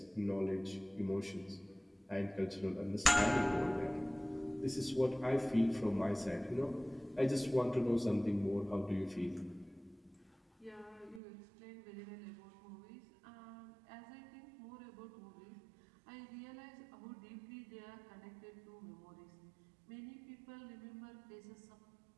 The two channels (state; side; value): drops out; left; at 11.2 s